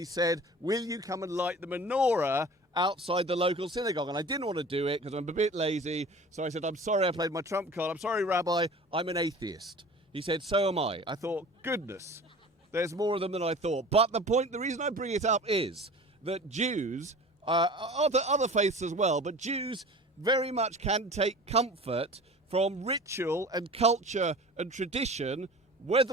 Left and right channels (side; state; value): both; normal; correlation 0.40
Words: said, "Will you come and light the menorah outside the local synagogue?" And I didn't want to do it because I'm a bit lazy. So I said, "I'm sorry, I played my trump card. I'm sorry, Rabbi, I'm an atheist." He said, "So am I." I thought, goodness, there's more of them than I thought. But the reason I bring it up is that Jews, other faiths as well, but Jews very much can take comfort from ritual and culture and tradition,